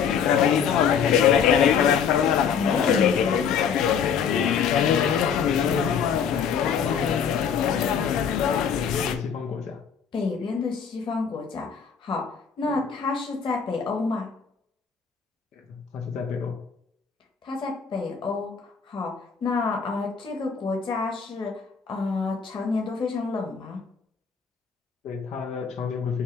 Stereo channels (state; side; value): quieter; right; 6.9 dB